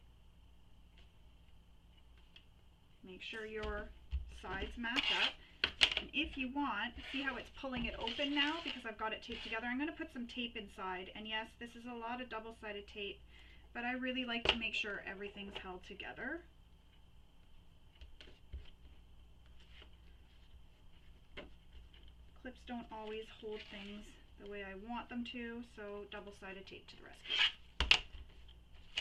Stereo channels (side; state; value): both; identical; correlation 1.00